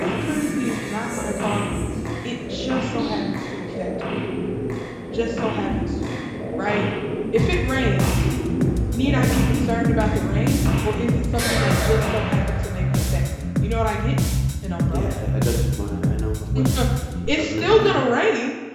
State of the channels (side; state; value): both; identical; correlation 1.00